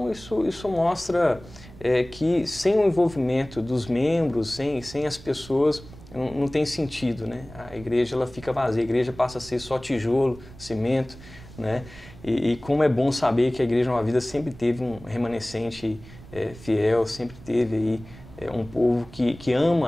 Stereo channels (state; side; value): noise; right; rumble, 18 dB below the sound